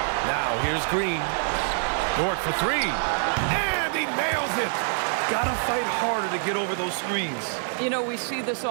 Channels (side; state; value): left; silent; digital silence